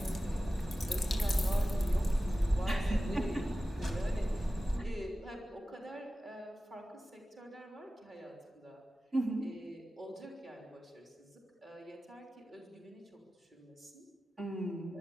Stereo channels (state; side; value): normal; both; correlation 0.95